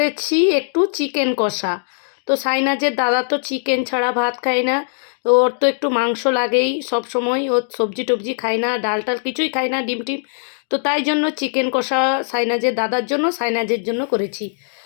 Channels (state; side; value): silent; right; digital silence